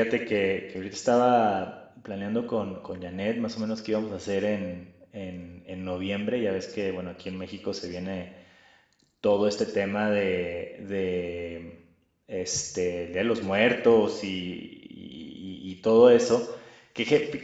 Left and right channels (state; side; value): identical; both; correlation 1.00